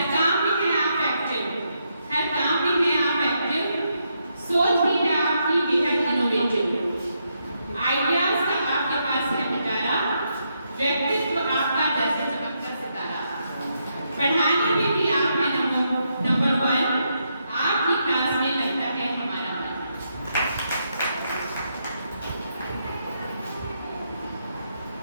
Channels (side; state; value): both; inverted; correlation -0.80